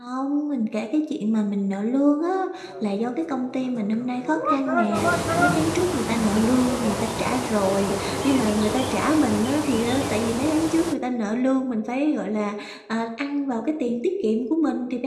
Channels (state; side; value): identical; both; correlation 1.00